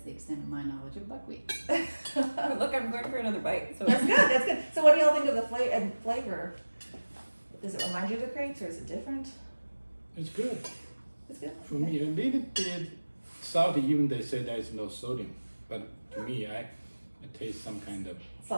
extent of my knowledge of buckwheat. Look, I'm going for another bite. So That's good. That's good. So what do y'all think of the flavor? Does it remind you of the crepes, or is it different? It's good. It's good. For me, a little bit salty, even they say there is no sodium. But to me, I taste some kind of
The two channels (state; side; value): inverted; both; correlation -1.00